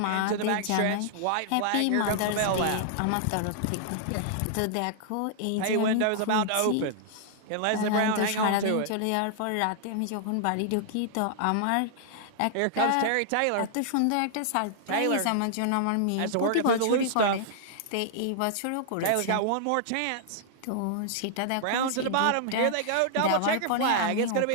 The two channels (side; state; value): both; different; correlation -0.01